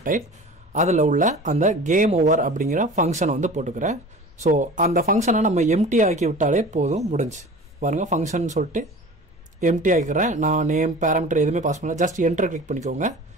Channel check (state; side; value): normal; both; correlation 0.39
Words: அதில் உள்ள அந்த கேம் ஓவர் அப்படிங்கிற ஃபங்க்ஷனை வந்து போட்டுக்கிறேன். ஸோ அந்த ஃபங்க்ஷனை நம்ம எம்டி ஆக்கி விட்டாலே போதும், முடிஞ்சு பாருங்கள். ஃபங்க்ஷன் சொல்லிட்டு எம்டி ஆக்கிக்கிறேன். நான் நேம் பேராமீட்டர் எதுவுமே பாஸ் பண்ணல, ஜஸ்ட் என்டர் கிளிக் பண்ணிக்கோங்க.